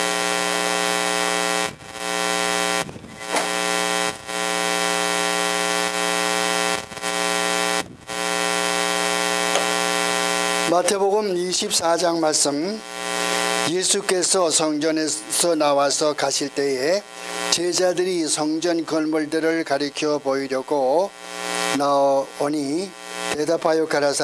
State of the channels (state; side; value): identical; both; correlation 1.00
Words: 마태복음 24장 말씀. 예수께서 성전에서 나와서 가실 때에 제자들이 성전 건물들을 가리켜 보이려고 나오니 대답하여